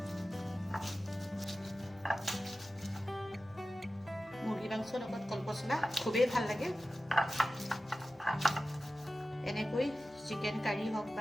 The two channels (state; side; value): normal; both; correlation 0.94